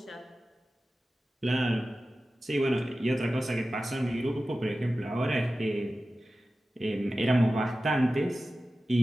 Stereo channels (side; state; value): both; normal; correlation 0.95